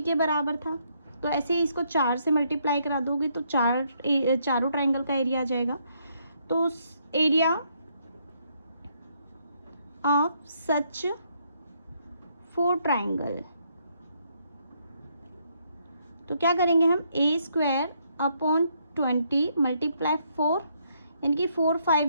के बराबर था। तो ऐसे ही इसको 4 से मल्टीप्लाई करा दोगे तो चारों ट्राइंगल का एरिया आ जाएगा। तो एरिया ऑफ सच 4 ट्राइंगल, तो क्या करेंगे हम, a²/20 मल्टीप्लाई 4, यानी कि 4 5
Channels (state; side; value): inverted; both; correlation -0.73